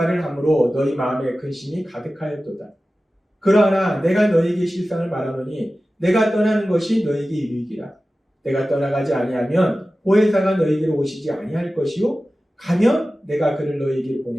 함으로 너희 마음에 근심이 가득하였도다. 그러나 내가 너희에게 실상을 말하노니 내가 떠나는 것이 너희에게 유익이라. 내가 떠나가지 아니하면 보혜사가 너희에게로 오시지 아니할 것이요 가면 내가 그를 너희에게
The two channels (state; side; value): normal; both; correlation 0.95